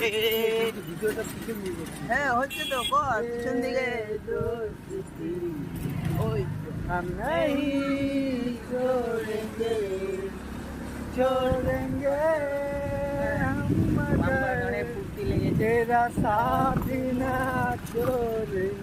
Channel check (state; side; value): identical; both; correlation 1.00